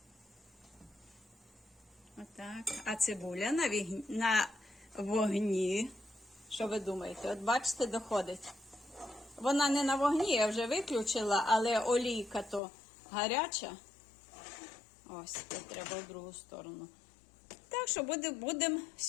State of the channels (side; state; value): right; drops out; at 12.6 s